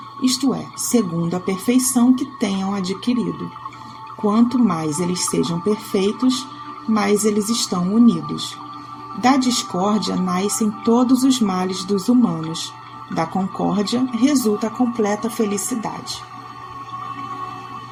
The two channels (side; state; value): both; identical; correlation 1.00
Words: isto é, segundo a perfeição que tenham adquirido. Quanto mais eles sejam perfeitos, mais eles estão unidos. Da discórdia nascem todos os males dos humanos. Da concórdia resulta a completa felicidade.